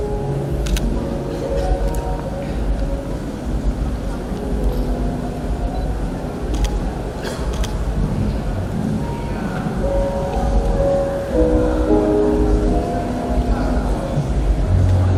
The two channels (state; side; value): identical; both; correlation 1.00